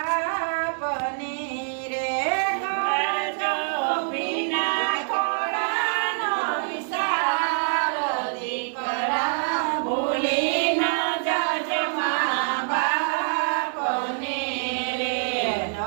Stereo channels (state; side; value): silent; left; digital silence